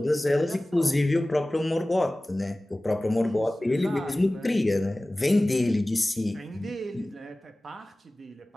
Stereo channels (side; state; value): both; normal; correlation 0.98